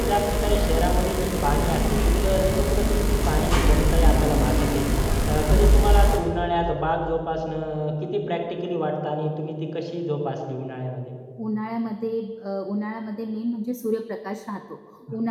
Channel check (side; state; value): both; identical; correlation 1.00